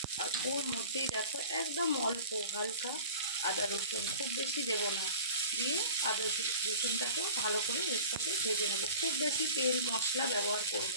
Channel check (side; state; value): both; inverted; correlation -0.41